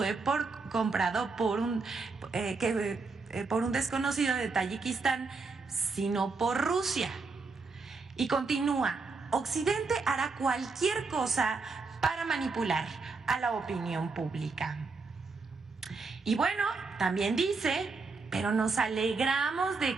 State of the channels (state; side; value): quieter; left; 4.2 dB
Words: comprado por un desconocido de Tayikistán, sino por Rusia. Y continúa: Occidente hará cualquier cosa para manipular a la opinión pública. Y bueno, también dice: pero nos alegramos